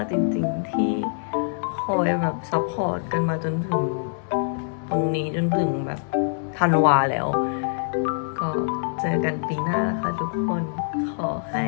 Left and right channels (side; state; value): right; silent; digital silence